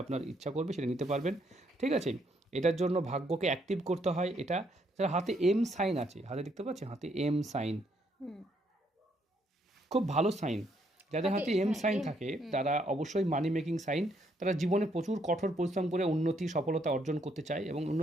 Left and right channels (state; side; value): normal; both; correlation 0.72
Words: আপনার ইচ্ছা করবে সেটা নিতে পারবেন, ঠিক আছে। এটার জন্য ভাগ্যকে অ্যাক্টিভ করতে হয়। এটা হাতে এম সাইন আছে, হাতে দেখতে পাচ্ছেন হাতে এম সাইন, খুব ভালো সাইন। যাদের হাতে এম সাইন থাকে তারা অবশ্যই মানি মেকিং সাইন, তারা জীবনে প্রচুর কঠোর পরিশ্রম করে উন্নতি সফলতা অর্জন করতে চায় এবং